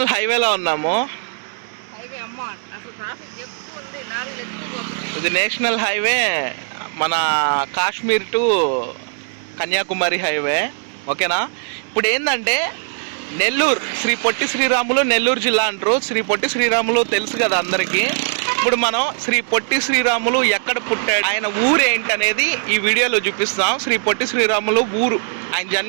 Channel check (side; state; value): left; silent; digital silence